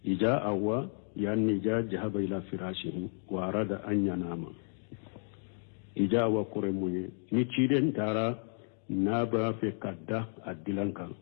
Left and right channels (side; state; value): right; silent; 56 dB below the other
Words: إجاء أوا يعني جاء جهب إلى فراشه وأراد أن ينام إجاء وقرمي نتشيرين تارا نابا في كداء دلنكا